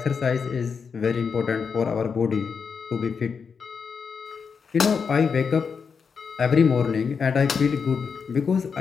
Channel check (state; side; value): quieter; right; 5.9 dB